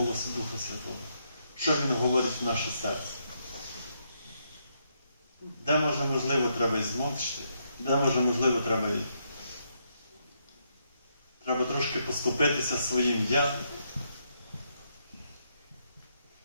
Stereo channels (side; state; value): both; inverted; correlation -0.78